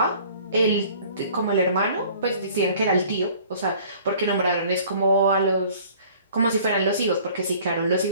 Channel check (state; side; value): inverted; both; correlation -0.51